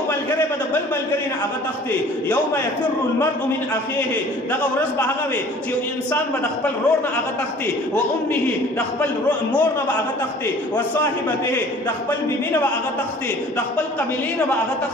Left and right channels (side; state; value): both; normal; correlation 0.49